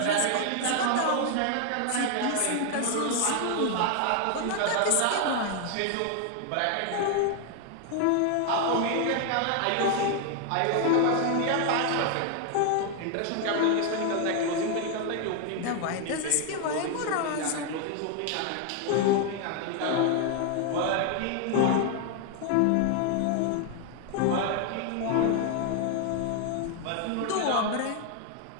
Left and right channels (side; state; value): both; different; correlation 0.00